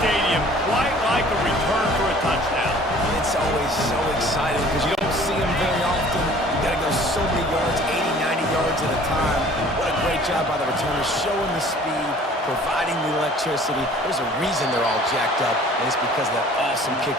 stadium quite like a return for a touchdown. It's always so exciting because you don't see them very often. You got to go so many yards, 80, 90 yards at a time. What a great job by the returners, showing the speed, providing the electricity. There's a reason they're all jacked up, and it's because of that awesome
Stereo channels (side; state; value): both; normal; correlation 0.51